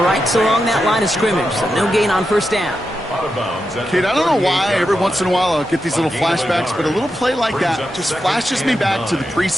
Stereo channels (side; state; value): both; normal; correlation 0.88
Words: right along that line of scrimmage. So no gain on first down. Out of bounds at Kate, the I don't know why 38-yard every once in a while I'll get these little A gain of a flashbacks, yard. but a little play like Brings that up just second flashes me and back to the 9.